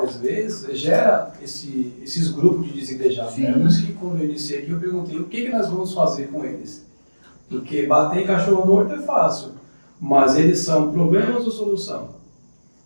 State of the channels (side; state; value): both; inverted; correlation -1.00